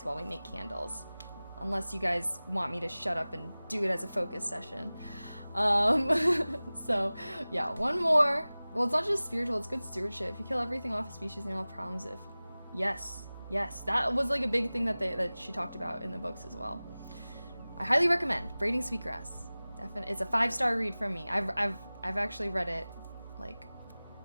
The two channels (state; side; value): inverted; both; correlation -0.98